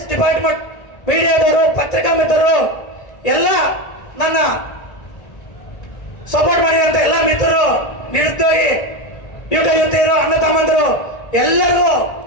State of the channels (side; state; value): right; late; 1.8 ms